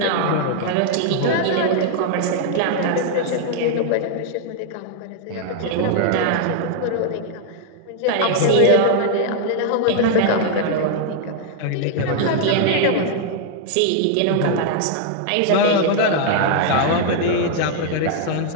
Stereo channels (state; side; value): different; both; correlation 0.00